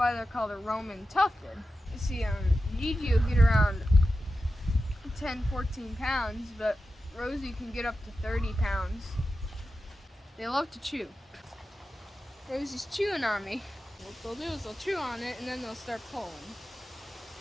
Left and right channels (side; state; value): both; normal; correlation 0.92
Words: they're called a Roman tufted. You see, GG will get around 10-14 pounds, but Rosie can get up to 30 pounds. They love to chew. Rosie's chewing on me. What they'll do is they'll chew on it and then they'll start pulling.